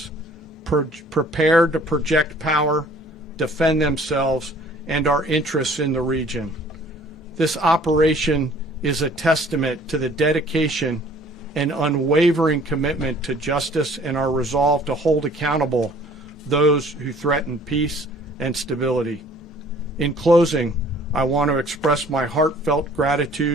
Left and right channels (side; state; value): both; normal; correlation 0.54